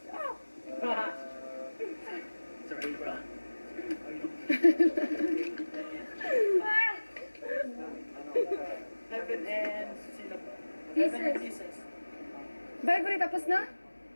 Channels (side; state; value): both; inverted; correlation -1.00